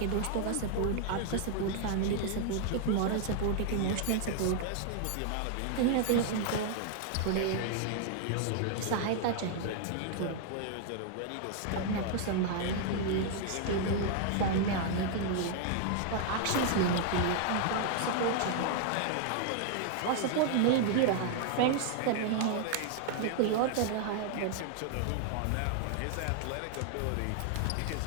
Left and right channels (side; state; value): both; different; correlation 0.00